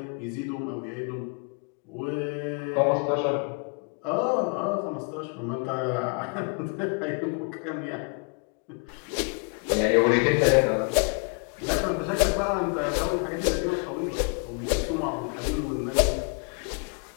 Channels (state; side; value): quieter; right; 36.6 dB